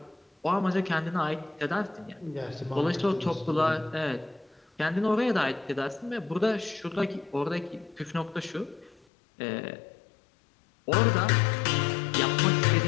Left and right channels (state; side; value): drops out; right; at 9.1 s